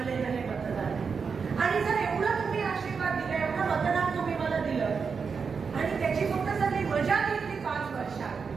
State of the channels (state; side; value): quieter; left; 5.6 dB